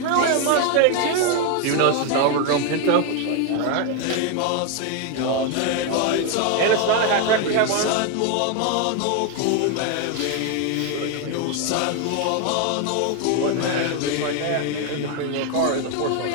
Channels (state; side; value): different; both; correlation 0.01